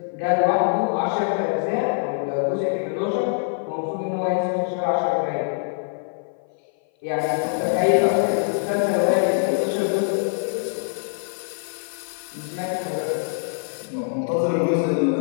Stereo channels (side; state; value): right; silent; 56 dB below the other